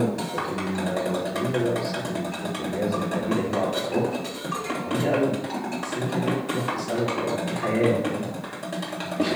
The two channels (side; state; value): both; identical; correlation 1.00